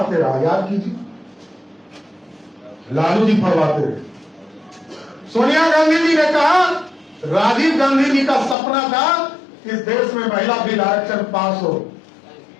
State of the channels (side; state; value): right; drops out; at 8.6 s